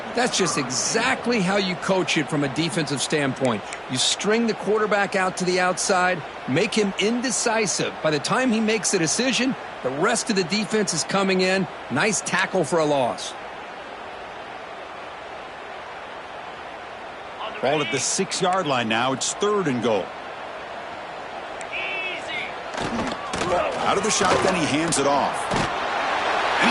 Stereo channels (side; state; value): both; identical; correlation 1.00